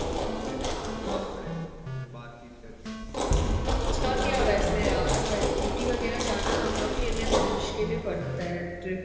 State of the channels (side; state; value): both; identical; correlation 1.00